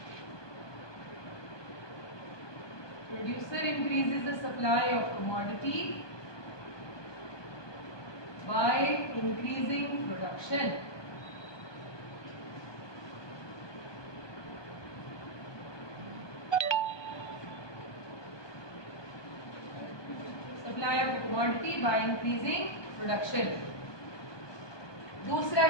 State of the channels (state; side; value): late; right; 1.2 ms